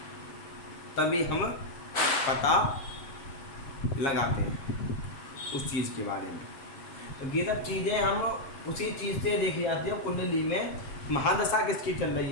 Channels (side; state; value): right; late; 7.2 ms